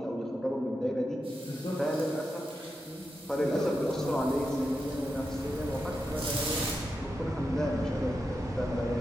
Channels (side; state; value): both; normal; correlation 0.88